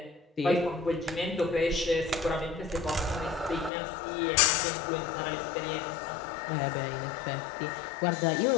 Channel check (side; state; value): right; drops out; at 3.7 s